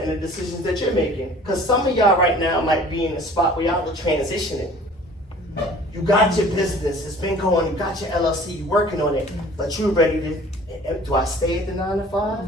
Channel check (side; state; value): both; normal; correlation 0.48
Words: and the decisions that you're making. Because some of y'all right now might be in a spot where y'all are transitioning. You got your business, it's been going, you got your LLC, you're working on it, but you're ready to, do I stay at the 9 to 5